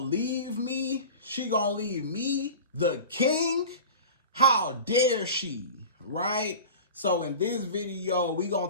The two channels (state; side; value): inverted; both; correlation -0.35